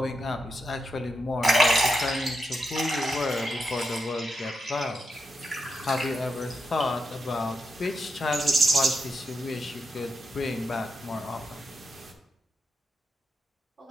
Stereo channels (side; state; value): both; normal; correlation 0.85